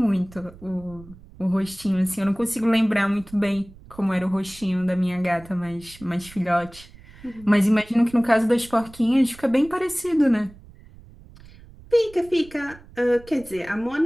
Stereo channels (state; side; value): noise; right; rumble, 21 dB below the sound